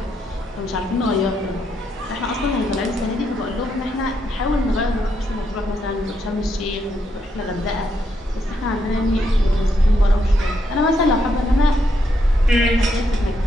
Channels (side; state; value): both; normal; correlation 0.78